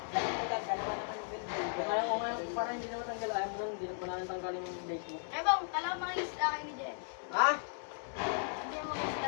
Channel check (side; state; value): right; silent; digital silence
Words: Dalawa naman yung building. Kaya ko nga, parang hindi naman tanggal. Ayaw mo lang, hindi na tanggalin yung base mo. Eh bang, kala mga isda kayo ni Jen. Ha? Hindi mo mga isda